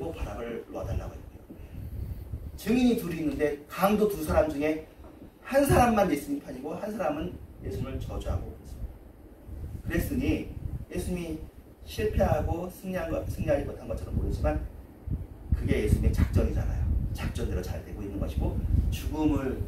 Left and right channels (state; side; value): identical; both; correlation 1.00